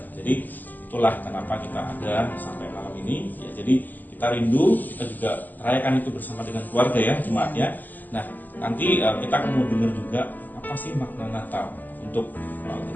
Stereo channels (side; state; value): right; late; 0.085 ms